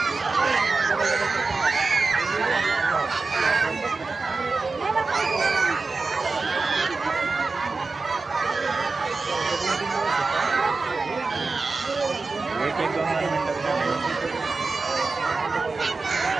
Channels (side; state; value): left; quieter; 4.0 dB